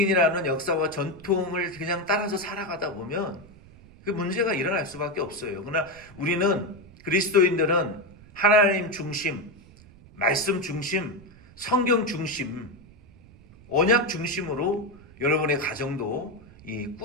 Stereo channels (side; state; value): right; noise; rumble, 23 dB below the sound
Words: 역사와 전통을 그냥 따라서 살아가다 보면 그 문제가 일어날 수밖에 없어요. 그러나 우리는, 그리스도인들은 하나님 중심, 말씀 중심, 성경 중심, 언약 중심으로 여러분의 가정도